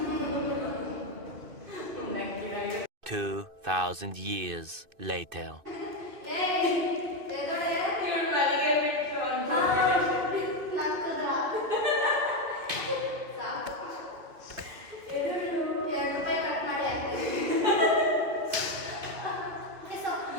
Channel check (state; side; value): late; left; 2.5 ms